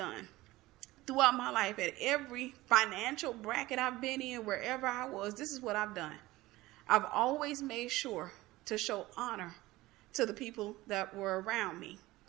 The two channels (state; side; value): quieter; left; 18.5 dB